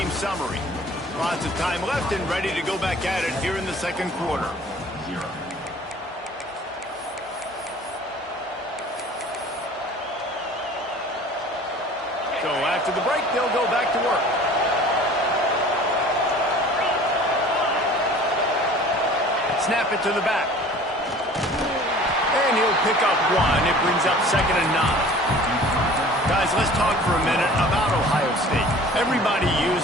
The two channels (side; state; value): both; normal; correlation 0.46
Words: summary. Lots of time left and ready to go back at it here in the second quarter. So after the break, they'll go back to work. Snap it to the back. And he'll pick up one. It brings up 2nd and 9. Guys, let's talk for a minute about Ohio State. Everybody